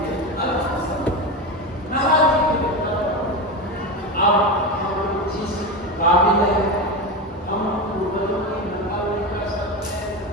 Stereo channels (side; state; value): both; normal; correlation 0.19